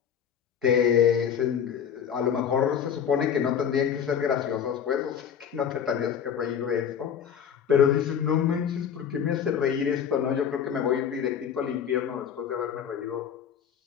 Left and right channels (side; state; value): right; quieter; 8.2 dB